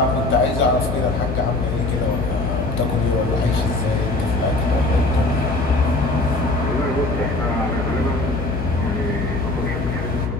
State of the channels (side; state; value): left; noise; hum, 4 dB below the sound